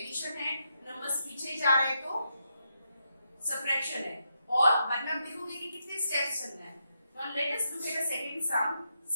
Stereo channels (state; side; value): inverted; both; correlation -0.82